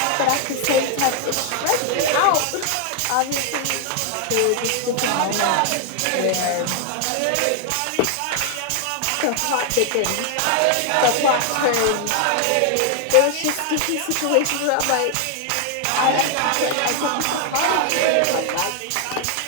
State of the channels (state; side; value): different; both; correlation 0.00